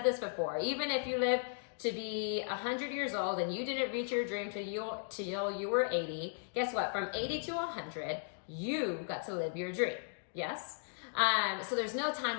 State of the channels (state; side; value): silent; right; digital silence